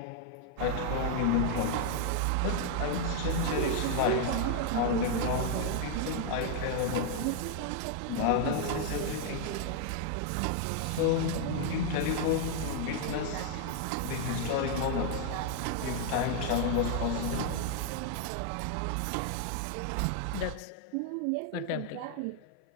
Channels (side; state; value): both; different; correlation 0.00